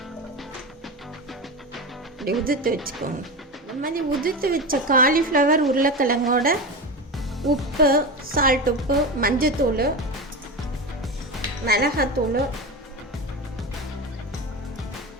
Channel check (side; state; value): both; normal; correlation 0.22